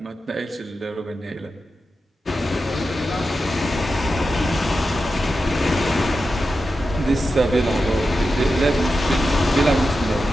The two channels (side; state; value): both; normal; correlation 0.90